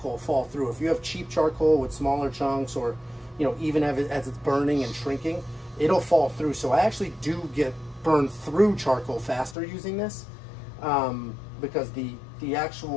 fall through. If you have cheap charcoal with smaller chunks, or even as it's burning and shrinking, it'll fall through. So I actually do get burned through charcoal faster using this, because the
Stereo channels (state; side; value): drops out; right; at 9.6 s